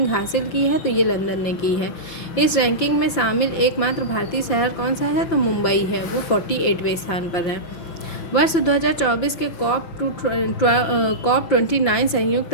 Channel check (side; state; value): right; late; 5.8 ms